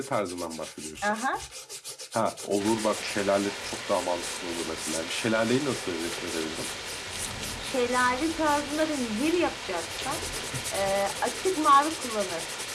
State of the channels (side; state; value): both; identical; correlation 1.00